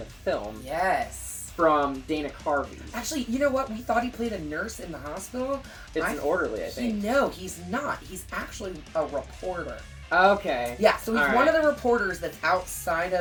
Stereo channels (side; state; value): both; identical; correlation 1.00